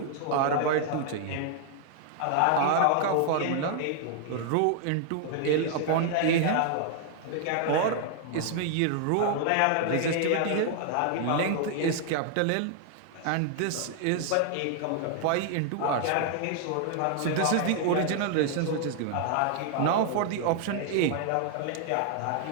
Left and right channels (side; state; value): both; different; correlation 0.00